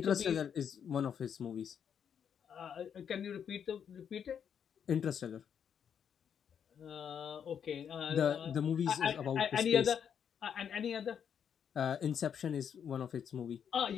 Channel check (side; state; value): right; quieter; 8.0 dB